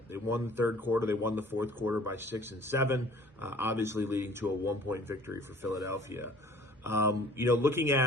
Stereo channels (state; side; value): normal; both; correlation 0.51